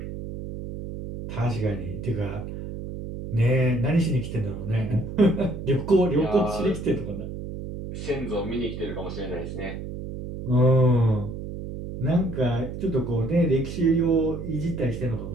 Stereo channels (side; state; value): right; noise; hum, 8 dB below the sound